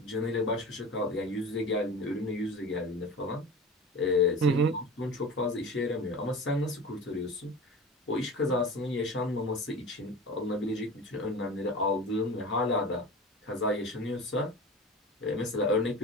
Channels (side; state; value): both; normal; correlation 0.34